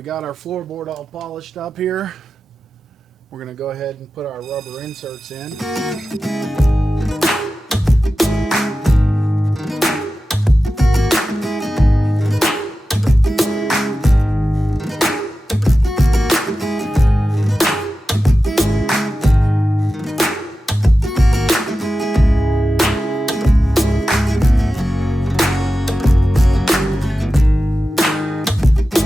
got our floorboard all polished up here. We're going to go ahead and put our rubber inserts in.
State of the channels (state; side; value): normal; both; correlation 0.93